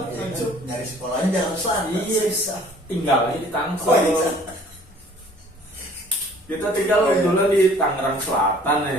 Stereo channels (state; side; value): normal; both; correlation 0.53